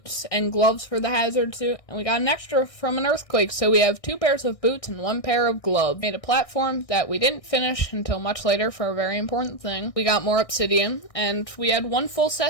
and gloves for the hazard suit, and we got an extra from an earthquake, so we have 2 pairs of boots and 1 pair of gloves. Made a platform that we didn't finish until much later for a very important thing. We got more obsidian, and we had 1 full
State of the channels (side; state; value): right; late; 1.6 ms